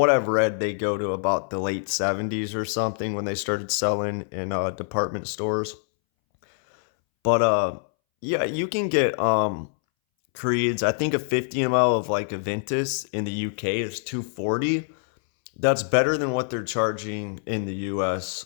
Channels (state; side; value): silent; right; 62 dB below the other